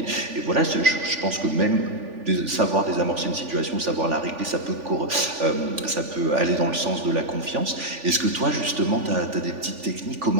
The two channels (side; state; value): left; late; 3.5 ms